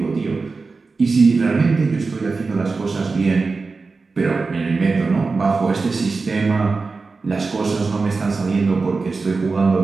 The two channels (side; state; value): left; quieter; 4.2 dB